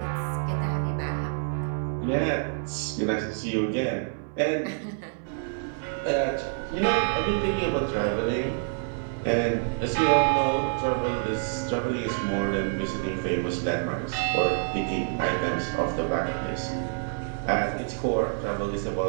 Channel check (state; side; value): silent; left; 60 dB below the other